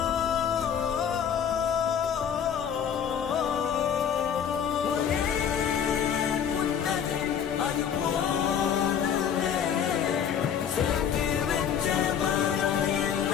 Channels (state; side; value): quieter; right; 8.2 dB